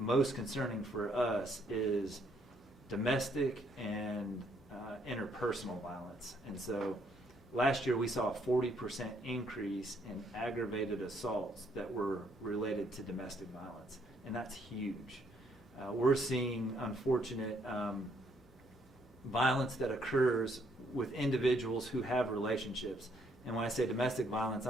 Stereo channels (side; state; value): both; normal; correlation 0.69